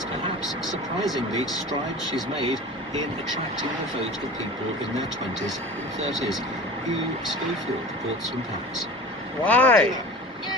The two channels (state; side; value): normal; both; correlation 0.37